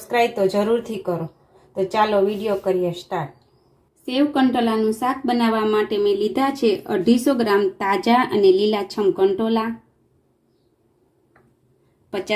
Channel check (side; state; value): both; identical; correlation 1.00